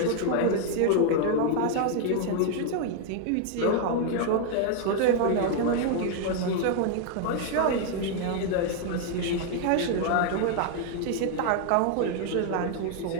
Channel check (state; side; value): different; both; correlation 0.00